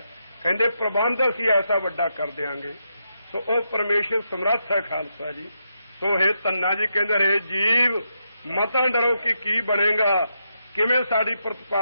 ਕਹਿੰਦੇ ਪ੍ਰਬੰਧ ਅਸੀਂ ਐਸਾ ਵੱਡਾ ਕਰ ਦਿਆਂਗੇ। ਸੋ ਉਹ ਪਰਮੇਸ਼ਰ ਸਮਰੱਥ ਹੈ ਖਾਲਸਾ ਜੀ। ਸੋ ਇਹ ਧੰਨਾ ਜੀ ਕਹਿੰਦੇ ਰਹੇ ਜੀਵ ਮਤਾਂ ਡਰੋ ਕਿ ਕੀ ਬਣੇਗਾ, ਕਿਵੇਂ ਸਾਡੀ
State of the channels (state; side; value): inverted; both; correlation -0.82